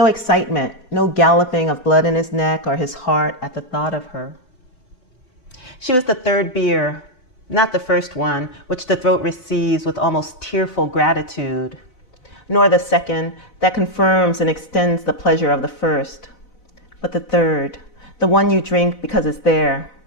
excitement, no galloping of blood in his neck or his heart at the thought of her. She was the 3rd beer, not the first one, which the throat receives with almost tearful gratitude, nor the 2nd that confirms and extends the pleasure of the first, but the 3rd, the one you drink because it's there,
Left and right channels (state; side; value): late; right; 4.0 ms